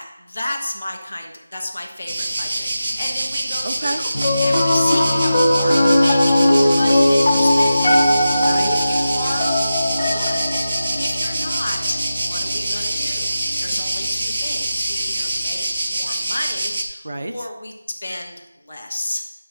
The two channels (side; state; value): both; inverted; correlation -0.92